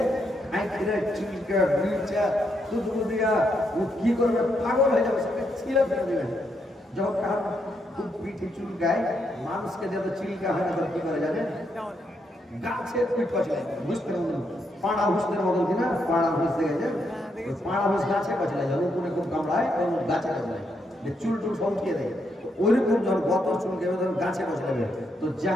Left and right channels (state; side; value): normal; both; correlation 0.78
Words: চুলকা বিলচা দুধ দিয়া ও কি করবে, পাগল হয়ে যাবে, সেটা ছিঁড়ে ফেলে দেবে। যখন কার খুব পিঠে চুলকায়, মানুষকে যত চিলকা হয় না, কি করে জানে, গাছে পিঠ পচলে, বুঝতে পারবেন, পাড়া হুসদের মতন কিনা, পাড়া হুস দেখেছে, ওই পাড়া হুস গাছে পচলে যায়, উপরে খুব কামড়ায়, গাছে পচলায়, চুল টুল সঙ্কিয়ে দেয়। ওইরকম যখন গতর চুলকেবে, তখন গাছে পচলাবে। তো